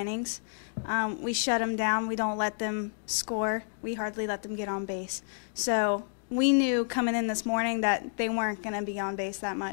We shut them down. We don't let them score. We hardly let them get on base. So we knew coming in this morning that they weren't going to be on base that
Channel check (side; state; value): right; silent; digital silence